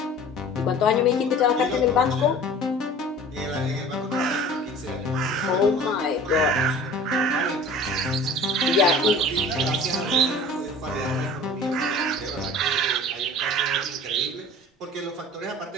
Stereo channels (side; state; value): both; normal; correlation 0.43